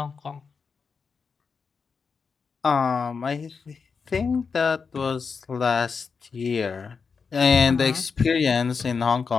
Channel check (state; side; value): quieter; right; 5.4 dB